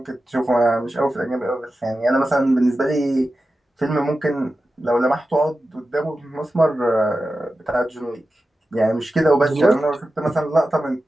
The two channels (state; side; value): normal; both; correlation 0.93